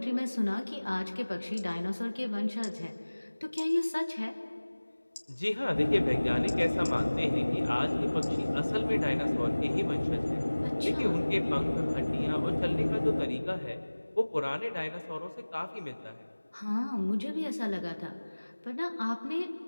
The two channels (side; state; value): both; inverted; correlation -1.00